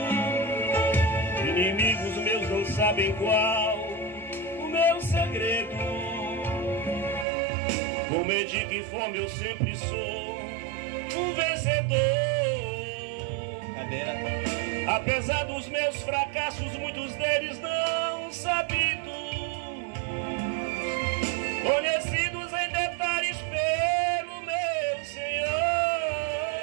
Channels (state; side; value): drops out; left; at 7.2 s